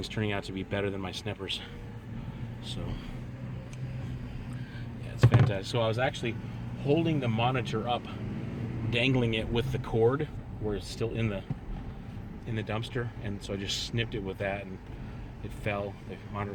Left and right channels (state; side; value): identical; both; correlation 1.00